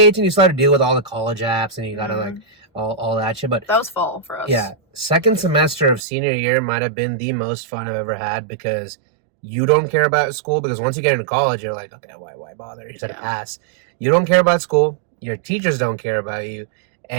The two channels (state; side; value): drops out; left; at 6.0 s